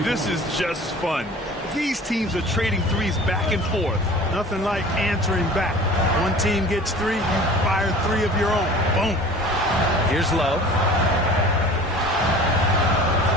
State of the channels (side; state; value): both; normal; correlation 0.43